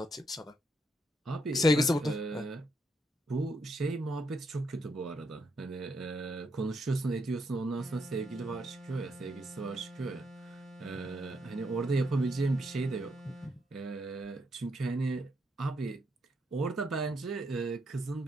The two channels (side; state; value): both; normal; correlation 0.78